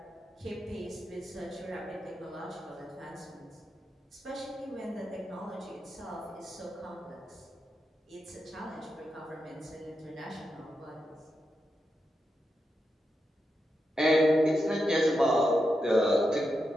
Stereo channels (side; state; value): both; normal; correlation 0.87